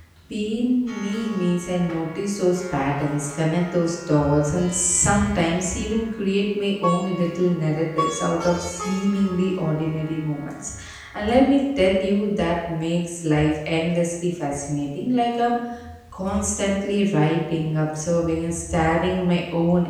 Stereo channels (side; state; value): both; identical; correlation 1.00